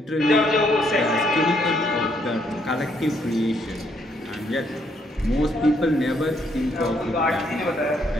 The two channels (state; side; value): normal; both; correlation 0.71